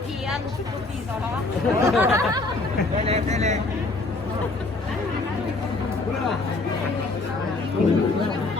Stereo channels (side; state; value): right; quieter; 3.3 dB